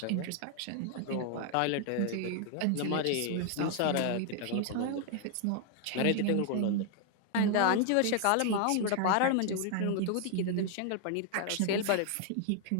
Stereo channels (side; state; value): both; different; correlation 0.00